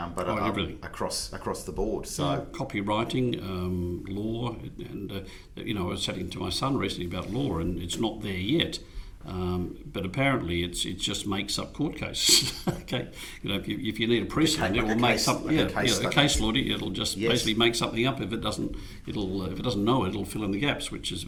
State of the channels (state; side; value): identical; both; correlation 1.00